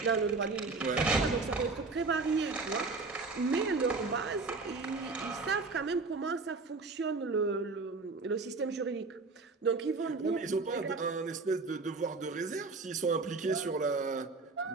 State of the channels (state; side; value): quieter; left; 3.9 dB